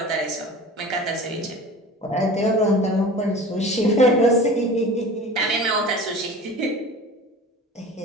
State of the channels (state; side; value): normal; both; correlation 0.38